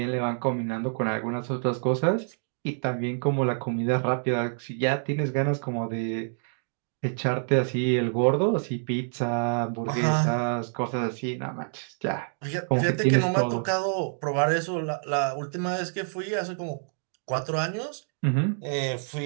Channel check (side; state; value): left; silent; digital silence